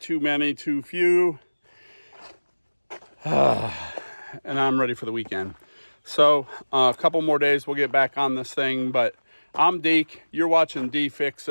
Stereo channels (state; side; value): inverted; both; correlation -1.00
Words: many, too few. And I'm ready for the weekend. So a couple more days, we'll get back on this thing. But I'm Deke, you're watching D